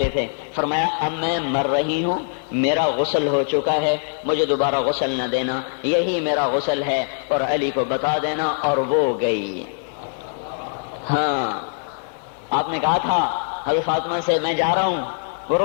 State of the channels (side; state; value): right; silent; digital silence